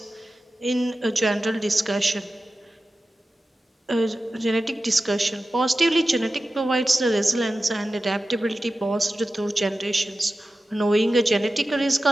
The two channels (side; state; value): both; normal; correlation 0.94